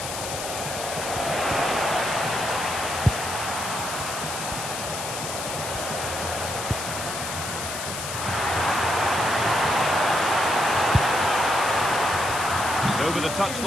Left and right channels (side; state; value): left; noise; hiss, 6 dB below the sound